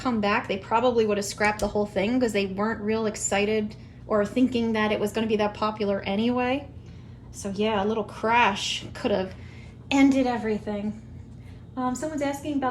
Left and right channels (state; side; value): identical; both; correlation 1.00